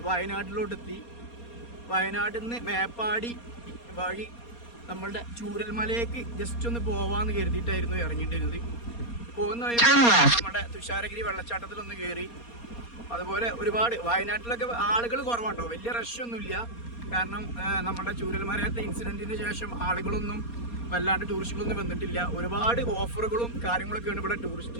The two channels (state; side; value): late; right; 4.2 ms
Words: വയനാട്ടിലോട്ടെത്തി. വയനാട്ടിൽ നിന്ന് മേപ്പാടി വഴി നമ്മളുടെ ചൂരൽമലയ്ക്ക് ജസ്റ്റ് ഒന്ന് പോവാന്ന് കരുതിയിട്ടായിരുന്നു ഇറങ്ങിയിട്ടിരുന്നത്. പോകുന്ന വഴി നമ്മുടെ തുഷാരഗിരി വെള്ളച്ചാട്ടത്തിലൊന്ന് കയറി. അതുപോലെ ഒരുപാട് വയനാട്ടിലൊക്കെ ആളുകൾ കുറവാട്ടോ, വലിയ റഷൊന്നുമില്ല. കാരണം നമ്മുടെ ചൂരൽമലയത്തെ ഇൻസിഡൻറ്റിന് ശേഷം ആളുകളൊന്നും വല്ലാണ്ട് ടൂറിസ്റ്റുകളൊന്നും വന്നിട്ടില്ല. ഒരുപാട് ഓഫറുകളും കാര്യങ്ങളൊക്കെയാണ് ഇവിടെ